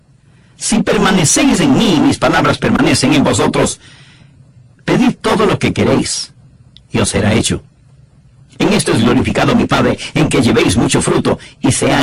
Si permanecéis en mí y mis palabras permanecen en vosotros, pedid todo lo que queréis, y os será hecho. En esto es glorificado mi Padre, en que llevéis mucho fruto, y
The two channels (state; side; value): identical; both; correlation 1.00